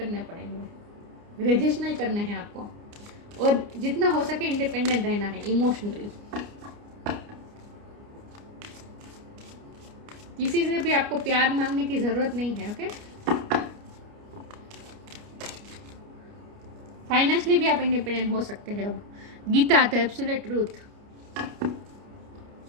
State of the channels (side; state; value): left; late; 29 ms